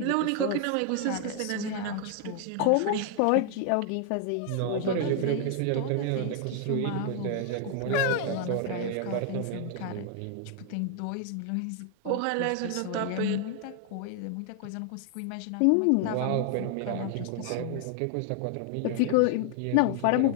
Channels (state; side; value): different; both; correlation 0.00